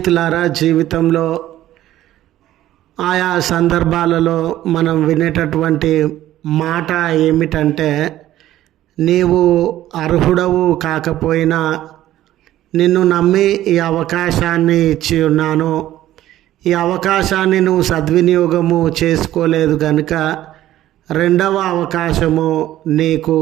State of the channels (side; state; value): left; quieter; 13.7 dB